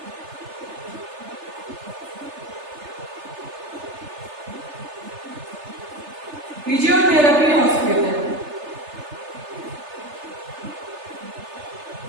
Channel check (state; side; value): late; left; 3.3 ms